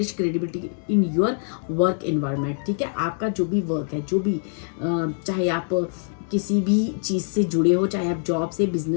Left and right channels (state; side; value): silent; right; digital silence